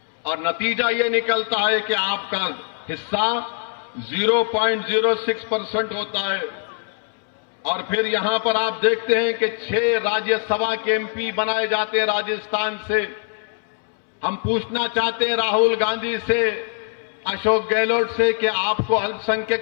और नतीजा ये निकलता है कि आपका हिस्सा 0.06% होता है। और फिर यहां पर आप देखते हैं कि 6 राज्यसभा के एमपी बनाए जाते हैं राजस्थान से। हम पूछना चाहते हैं राहुल गांधी से, अशोक गहलोत से कि आपको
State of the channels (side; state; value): right; silent; 63 dB below the other